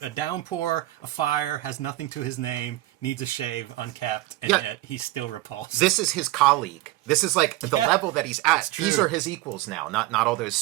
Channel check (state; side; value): quieter; left; 17.2 dB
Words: downpour, a fire, has nothing to his name, needs a shave, unkept, and yet he's still repulsed. This is his colleague. This is like the level that he's at. True. These are his equals now, not all those